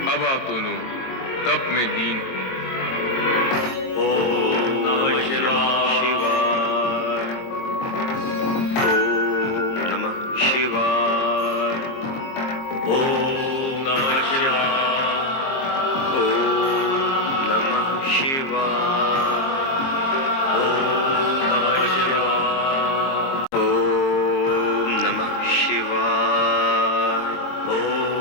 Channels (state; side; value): late; right; 22 ms